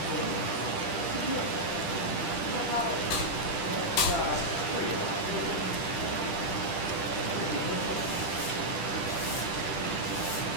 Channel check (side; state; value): right; late; 10 ms